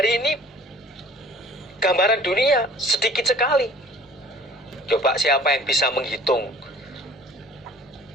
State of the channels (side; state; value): both; normal; correlation 0.50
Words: ini gambaran dunia sedikit sekali. Coba siapa yang bisa menghitung,